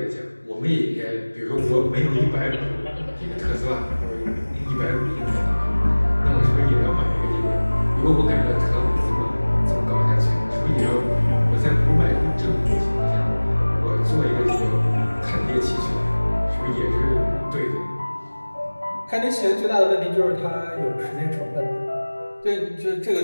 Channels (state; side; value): inverted; both; correlation -1.00